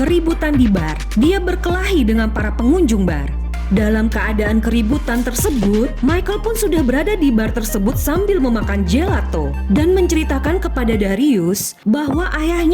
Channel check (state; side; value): identical; both; correlation 1.00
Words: di bar. Dia berkelahi dengan para pengunjung bar. Dalam keadaan keributan tersebut, Michael pun sudah berada di bar tersebut sambil memakan gelato dan menceritakan kepada Darius bahwa